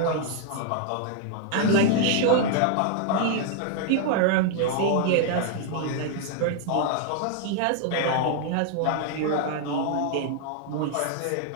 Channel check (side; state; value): both; different; correlation 0.00